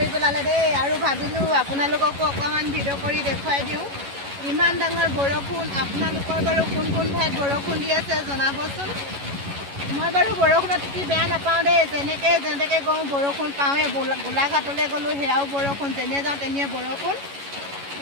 পেলালে দেই। আৰু ভাবিলোঁ আপোনালোককো অকণমান ভিডিঅ' কৰি দেখুৱাই দিওঁ, ইমান ডাঙৰ বৰষুণ। আপোনালোকৰ বাৰু কোন কোন ঠাইত বৰষুণ দি আছে জনাবচোন। মই বাৰু বৰষুণত তিতি বেয়া নাপাওঁ দেই, যেনেকৈ গওঁ বৰষুণ পাওঁৱেই। গোলাঘাটলৈ গ'লোঁ সেয়াও বৰষুণ, যেনে যাওঁ তেনে বৰষুণ।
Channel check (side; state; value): left; late; 11 ms